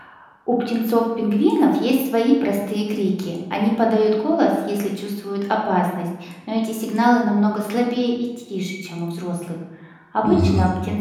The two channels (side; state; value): both; identical; correlation 1.00